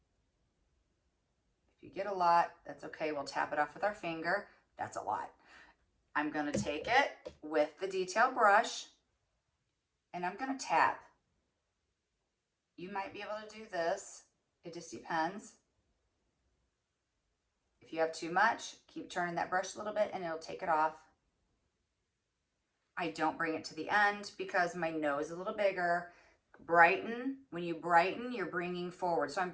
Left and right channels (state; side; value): identical; both; correlation 1.00